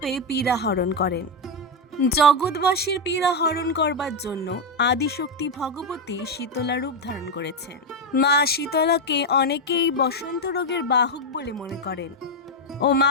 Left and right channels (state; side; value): normal; both; correlation 0.05